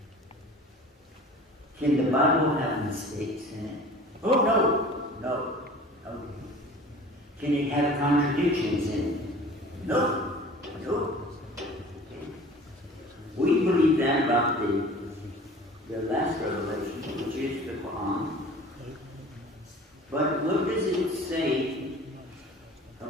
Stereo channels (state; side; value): normal; both; correlation 0.44